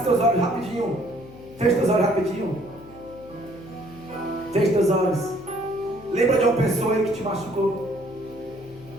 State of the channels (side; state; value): left; noise; hum, 19 dB below the sound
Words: seus olhos rapidinho. Feche seus olhos rapidinho. Feche seus olhos. Lembra de uma pessoa aí que te machucou?